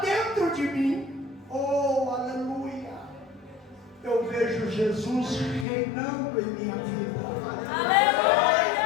de mim. Oh, aleluia! Eu vejo Jesus reinando em minha vida.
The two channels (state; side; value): drops out; right; at 5.7 s